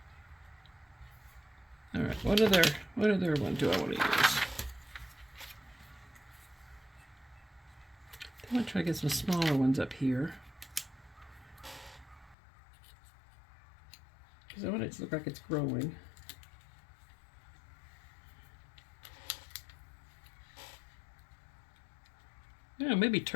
Alright, what other one do I want to use? I'm going to try to get some smaller ones up here. Because I want it to look like it's growing. Yeah, maybe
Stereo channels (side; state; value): right; drops out; at 12.4 s